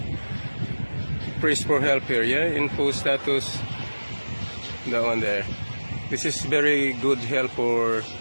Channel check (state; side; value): inverted; both; correlation -1.00